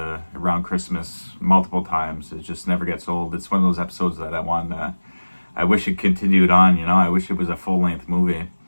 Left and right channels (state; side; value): inverted; both; correlation -1.00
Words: Christmas multiple times. It just never gets old. It's one of those episodes that I wish it continued on, I wish it was a full-length movie.